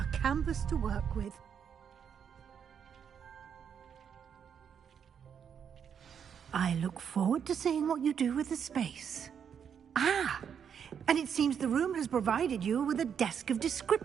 canvas to work with. I look forward to seeing what you do with the space. Ah, and it seems the room has provided you with a desk of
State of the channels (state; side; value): quieter; left; 7.7 dB